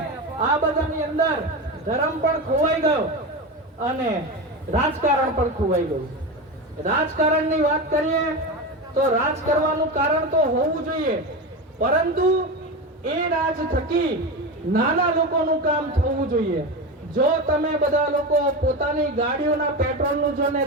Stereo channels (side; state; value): both; normal; correlation 0.21